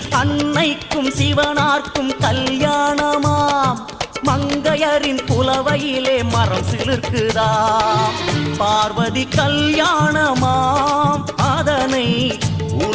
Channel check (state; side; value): identical; both; correlation 1.00